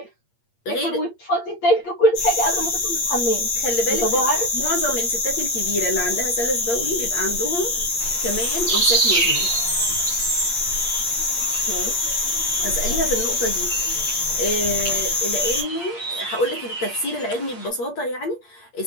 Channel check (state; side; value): late; right; 8.6 ms